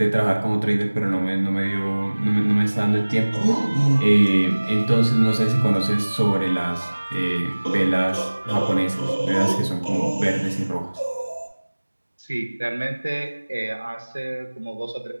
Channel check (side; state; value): both; inverted; correlation -1.00